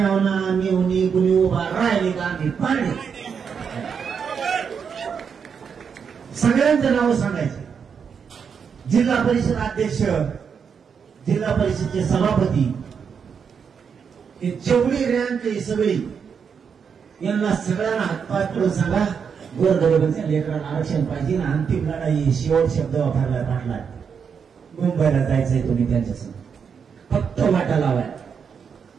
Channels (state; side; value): quieter; left; 6.6 dB